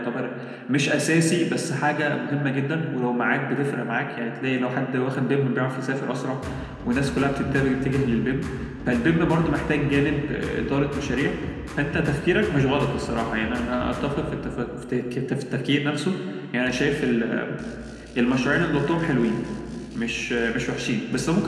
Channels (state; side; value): identical; both; correlation 1.00